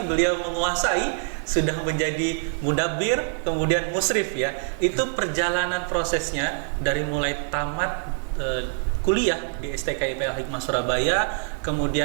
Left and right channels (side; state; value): left; silent; 60 dB below the other